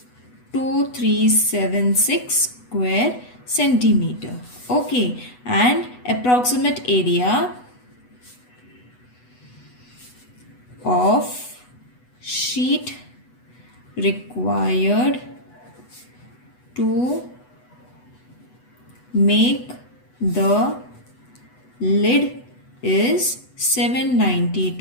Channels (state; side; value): late; right; 8.1 ms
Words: 2376 square centimeter. Okay, and approximate area of sheet required to make the lid is